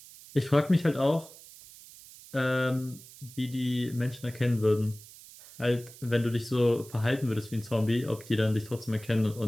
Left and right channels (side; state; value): right; noise; hiss, 19 dB below the sound